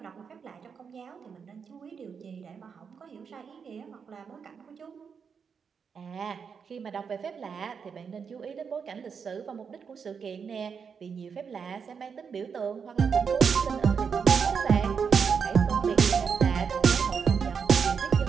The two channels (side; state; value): left; quieter; 6.3 dB